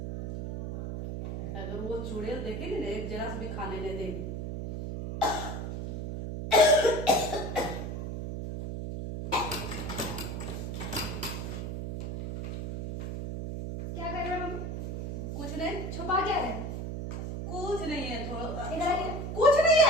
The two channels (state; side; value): noise; right; hum, 5 dB below the sound